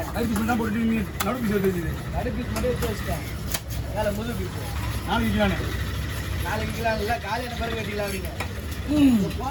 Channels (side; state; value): both; identical; correlation 1.00